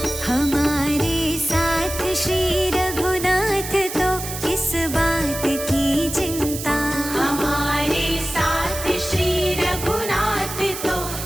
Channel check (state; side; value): noise; right; hiss, 8 dB below the sound